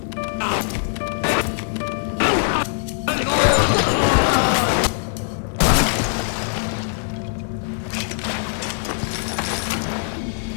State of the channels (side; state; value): right; silent; digital silence